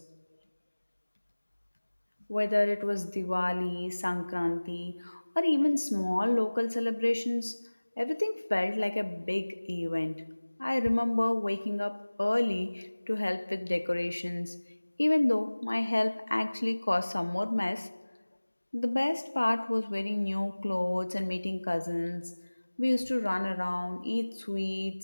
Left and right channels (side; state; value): both; inverted; correlation -1.00